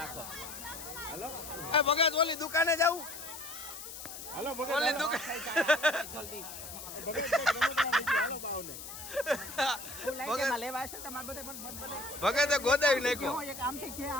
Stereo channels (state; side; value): noise; left; hiss, 11 dB below the sound